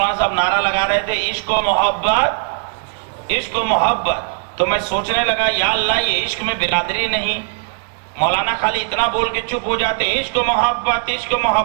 صاحب نعرہ لگا رہے تھے عشق و محبت، عشق و محبت، تو میں سوچنے لگا یا اللہ یہ عشق میں برادری نہیں، مولانا خالی اتنا بول کے چپ ہو جاتے، عشق و محبت، عشق و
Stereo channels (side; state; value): left; silent; 67 dB below the other